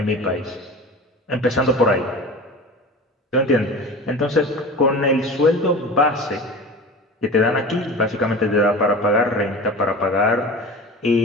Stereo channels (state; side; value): normal; both; correlation 0.35